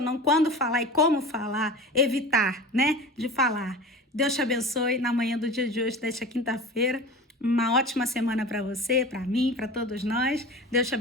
não, quando falar e como falar, evitar, né? De falar. Deus te abençoe na manhã do dia de hoje, desta quinta-feira. Uma ótima semana para você, para mim, para todos nós. Deus te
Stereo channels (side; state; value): both; normal; correlation 0.34